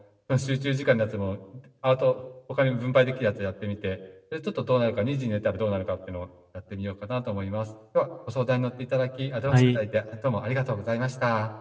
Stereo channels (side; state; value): both; identical; correlation 1.00